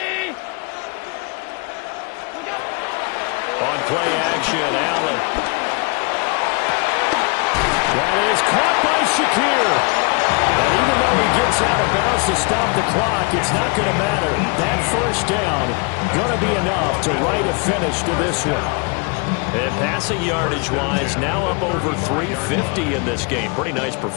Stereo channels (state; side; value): quieter; right; 31.8 dB